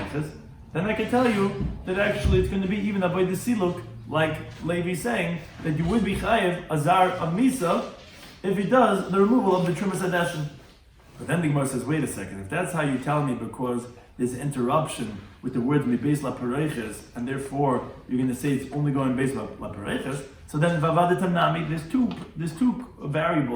then I can tell you that actually it's going to be even avodas siluk, like Levi's saying that you would be chayev azar of misa if he does the removal of the trumas hadeshin. But then the Gemara says, wait a second, if that's how you tell me because there's interruption with the words beis la pareiches, and therefore you're going to say it's only going beis la pareiches, so then vavadetam nami, there's two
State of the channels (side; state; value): both; identical; correlation 1.00